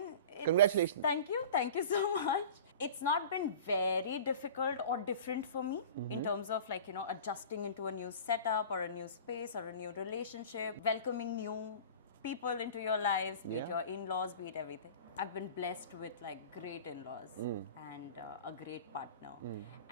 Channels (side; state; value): both; inverted; correlation -0.39